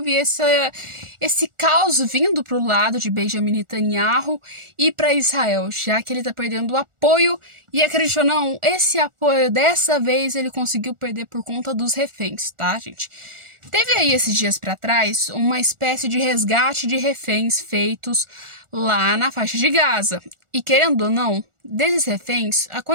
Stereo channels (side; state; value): left; late; 1.4 ms